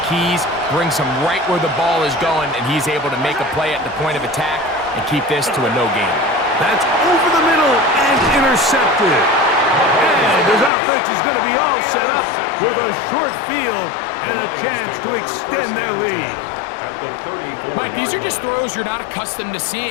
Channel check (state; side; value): drops out; right; at 10.7 s